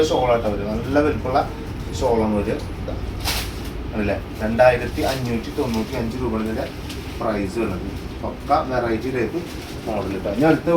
ഷോളായിട്ട് വരും. നല്ല വലുപ്പമുള്ള ഷോളാണ് വരിക. അല്ലേ 2595 രൂപയുടെ പ്രൈസ് വരുന്നത്. പക്ക വെറൈറ്റി ടൈപ്പ് മോഡൽ കിട്ടുക. ഇനി അടുത്ത്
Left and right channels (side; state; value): both; identical; correlation 1.00